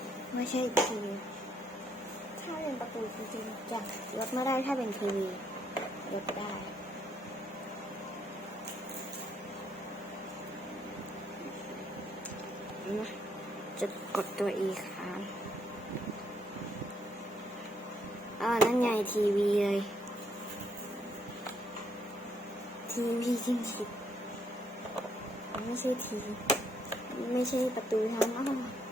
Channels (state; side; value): normal; both; correlation 0.72